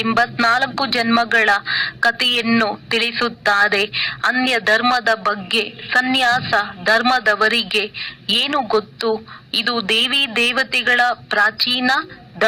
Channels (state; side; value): identical; both; correlation 1.00